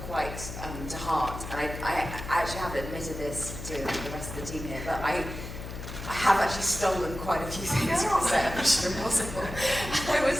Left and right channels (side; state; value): left; noise; hum, 9 dB below the sound